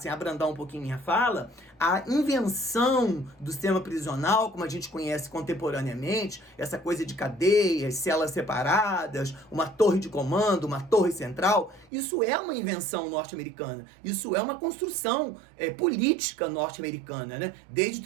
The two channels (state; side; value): drops out; left; at 11.9 s